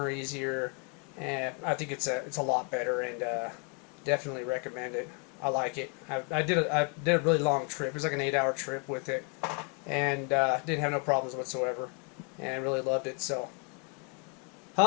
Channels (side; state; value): right; quieter; 37.0 dB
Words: easier, and I think it's a lot better, and definitely recommend it. I like it. I did a really long trip. It was like an 8-hour trip with it, and didn't have no problems whatsoever, and really loved it. So,